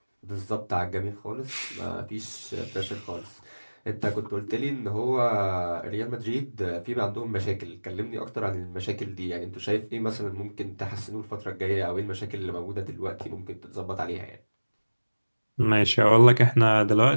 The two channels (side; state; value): both; inverted; correlation -1.00